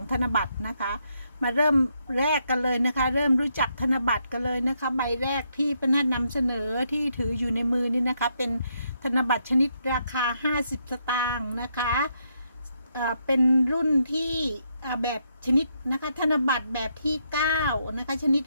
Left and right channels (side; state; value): both; inverted; correlation -0.77